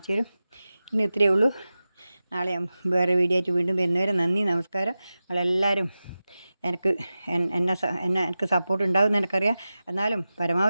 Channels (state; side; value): inverted; both; correlation -0.95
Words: തരും. ഇന്ന് ഇത്രയേ ഉള്ളൂ. നാളെ ഞാൻ വേറെ വീഡിയോ ആയിട്ട് വീണ്ടും വരുന്നവരെ നന്ദി, നമസ്കാരം. നിങ്ങളെല്ലാവരും എനിക്ക് സപ്പോർട്ട് ഉണ്ടാകുമെന്ന് എനിക്കറിയാം. എന്നാലും